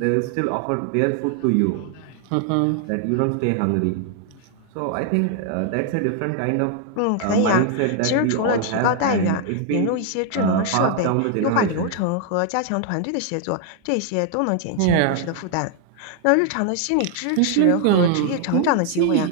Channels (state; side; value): different; both; correlation 0.00